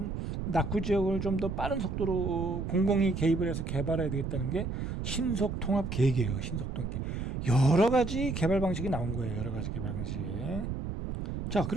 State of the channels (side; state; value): right; noise; rumble, 4 dB below the sound